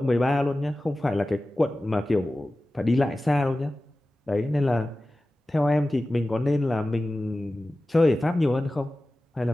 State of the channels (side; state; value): both; normal; correlation 0.96